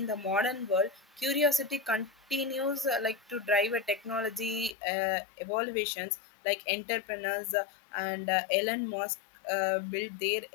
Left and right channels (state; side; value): drops out; right; at 4.8 s